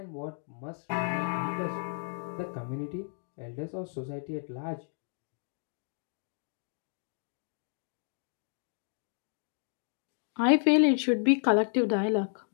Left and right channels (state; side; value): silent; right; 56 dB below the other